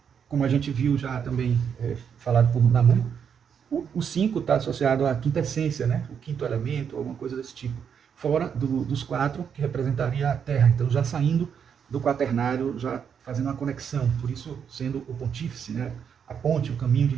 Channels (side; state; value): left; quieter; 7.5 dB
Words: Como a gente viu já também falado por Namu, o 5 está associado à quinta essência, né, o quinto elemento, alguma coisa desse tipo. Fora dos 4, que representaria a Terra. Então, já saindo do quaternário, já fazendo uma conexão, por isso sendo o pontífice, né, a ponte, o caminho de